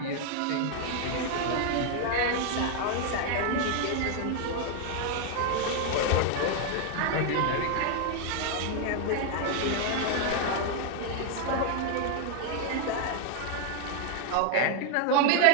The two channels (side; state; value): both; different; correlation 0.00